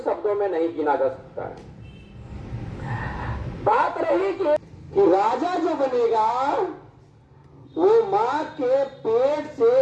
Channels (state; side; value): identical; both; correlation 1.00